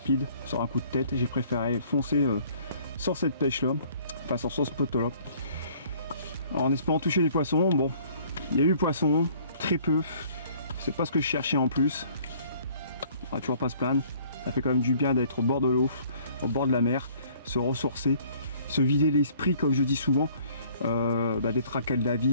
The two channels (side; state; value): both; inverted; correlation -0.56